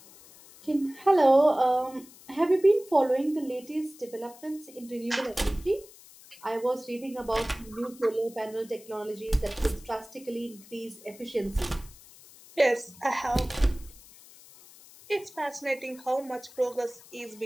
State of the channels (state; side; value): noise; left; hiss, 22 dB below the sound